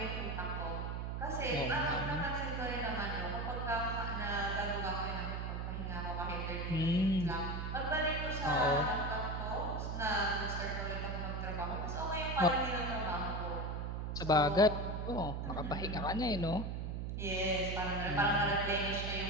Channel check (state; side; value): noise; right; hum, 3 dB below the sound